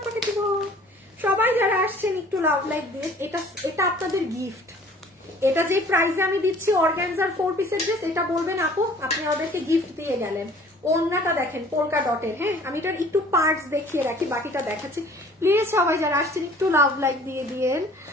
করে দিব। সবাই যারা আসছেন একটু লাভ লাইক দিয়ে। এটা আপনাদের গিফট। এটা যে প্রাইসে আমি দিচ্ছি অর্গানজার 4 পিসের ড্রেস, এটা বলবেন আপু আপনি আমাদেরকে গিফট দিয়ে গেলেন। ওড়নাটা দেখেন পোলকা ডটের। হ্যাঁ, আমি এটার একটু পার্টস দেখিয়ে রাখি, বাকিটা দেখাচ্ছি। প্লিজ সবাই যারা আসছেন একটু লাভ লাইক দিয়ে দিয়েন।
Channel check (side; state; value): both; normal; correlation 0.51